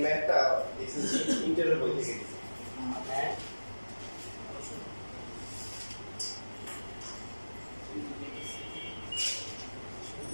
ম্যাথটা ইন্টারের বই থেকে দিয়েছি।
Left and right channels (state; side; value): inverted; both; correlation -1.00